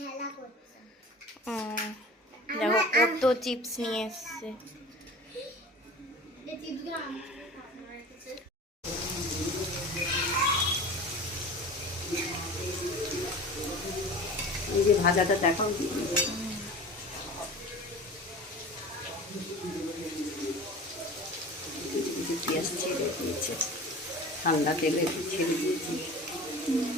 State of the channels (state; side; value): normal; both; correlation 0.37